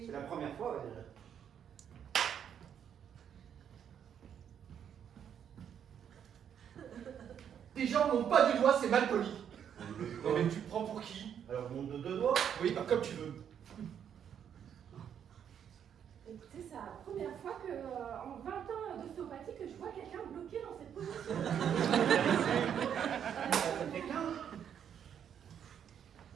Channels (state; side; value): quieter; left; 8.7 dB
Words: C'est la première fois, déjà. Les gens n'ont pas du doigt, c'est mal poli. Non mais tu te prends pour qui? Alors monte de 2 doigts? Oui, bah comme tu veux. Écoutez, c'est la première fois que, en 20 ans d'ostéopathie, que je vois quelqu'un bloqué dans cette position. Ça fait 15.